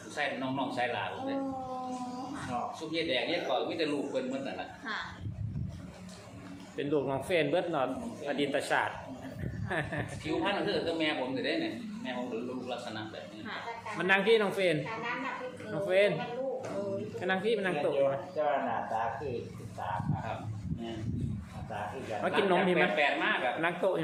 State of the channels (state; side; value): identical; both; correlation 1.00